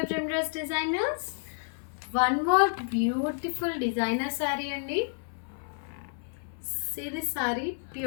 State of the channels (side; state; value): right; silent; 58 dB below the other